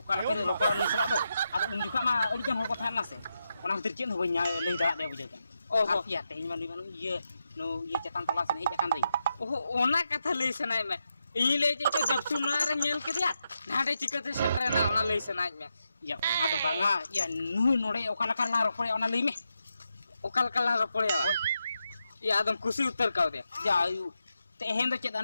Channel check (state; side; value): inverted; both; correlation -0.86